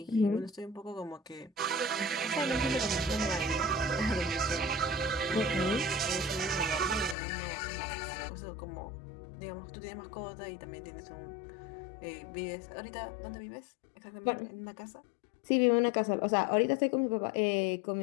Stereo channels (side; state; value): right; drops out; at 7.2 s